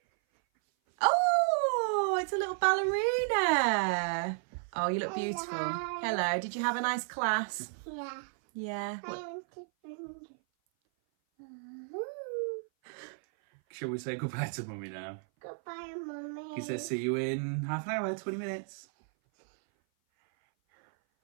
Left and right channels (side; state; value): left; silent; 56 dB below the other